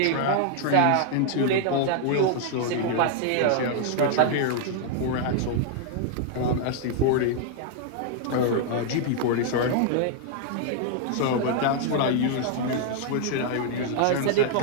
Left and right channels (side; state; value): both; different; correlation 0.00